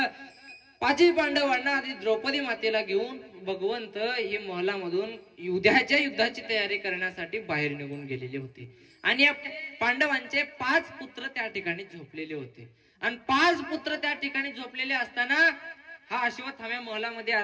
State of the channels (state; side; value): identical; both; correlation 1.00